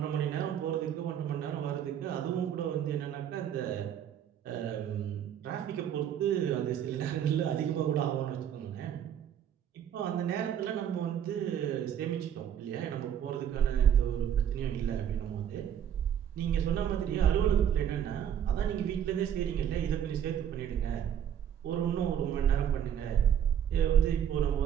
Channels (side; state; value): left; quieter; 9.4 dB